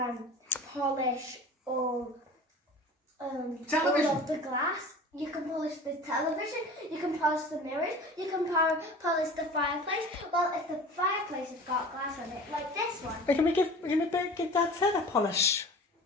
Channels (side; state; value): both; normal; correlation 0.40